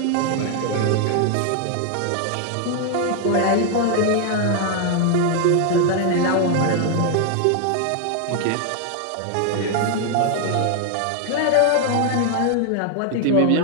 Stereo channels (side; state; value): both; different; correlation 0.00